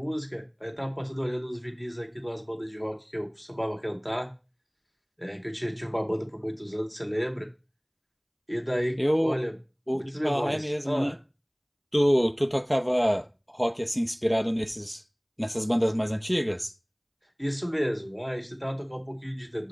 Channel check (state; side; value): identical; both; correlation 1.00